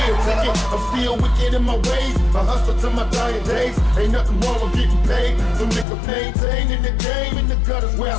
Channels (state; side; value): drops out; right; at 5.9 s